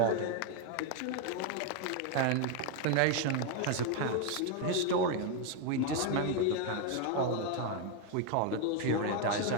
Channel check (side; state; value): both; different; correlation 0.01